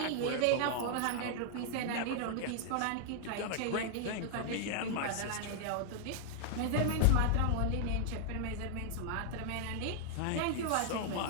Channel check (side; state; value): both; different; correlation -0.01